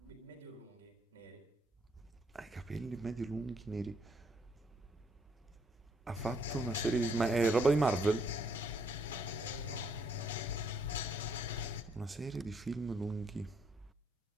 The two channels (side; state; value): both; normal; correlation 0.70